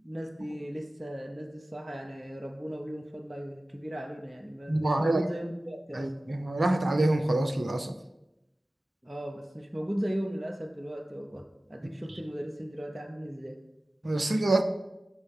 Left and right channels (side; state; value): both; normal; correlation 0.97